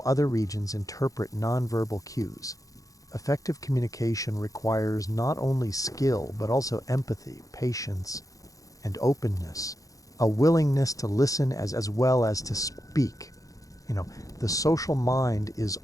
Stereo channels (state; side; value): late; right; 0.17 ms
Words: other regions interpret nonverbal cues. Effective communication requires not only skill, but also empathy, patience, and openness, a willingness to listen as well as to speak. The social mind is